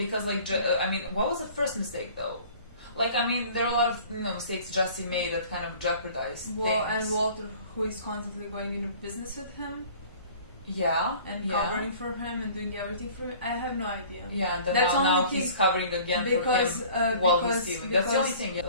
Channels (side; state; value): both; inverted; correlation -0.48